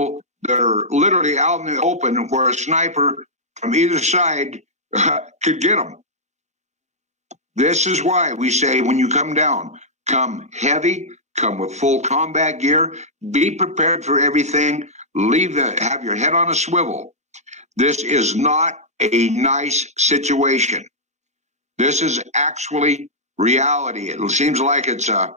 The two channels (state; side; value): normal; both; correlation -0.11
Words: that are literally out in the open where a sniper from either side could get them. This is why we say when you come down, come heavy, come with full combat gear, be prepared for everything. Have your head on a swivel. This is not a nice situation. This is actually reality. It seems like it's a